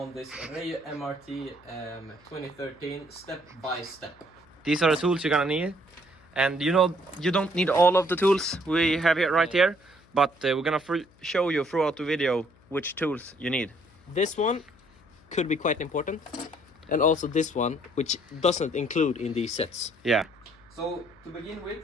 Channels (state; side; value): noise; left; hum, 29 dB below the sound